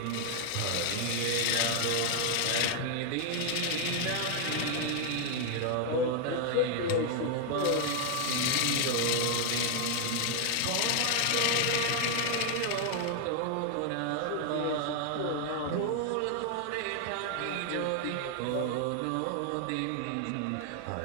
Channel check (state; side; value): different; both; correlation 0.00